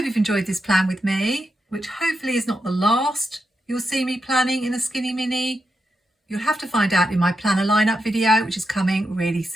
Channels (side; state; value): both; normal; correlation 0.86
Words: you've enjoyed this plan with me, which hopefully is not the last you'll see me planning in a Skinny Mini. You'll have to find out in my planner lineup video, which is coming really